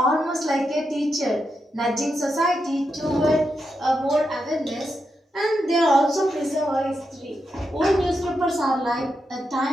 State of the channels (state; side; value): normal; both; correlation 0.85